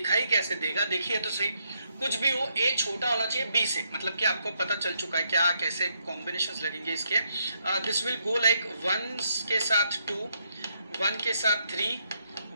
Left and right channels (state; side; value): inverted; both; correlation -0.76